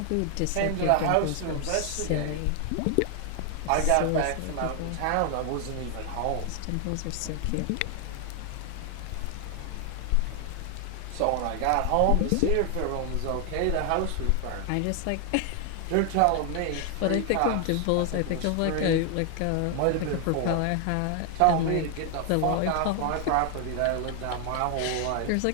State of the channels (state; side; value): different; both; correlation 0.00